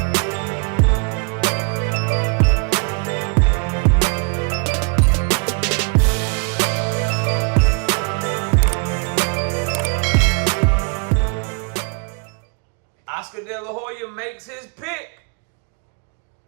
Oscar De La Hoya makes his pick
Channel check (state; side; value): quieter; left; 36.3 dB